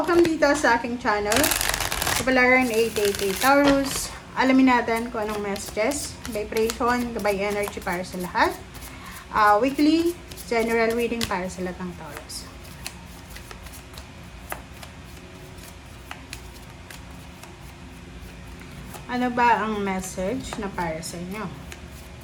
dito sa aking channel. Kapalaran 888 Taurus. Alamin natin kung anong messages, vibration, gabay energy para sa lahat. Weekly, general reading para sa lahat ng Taurus. Ano ba ang message na para sa inyo?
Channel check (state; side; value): identical; both; correlation 1.00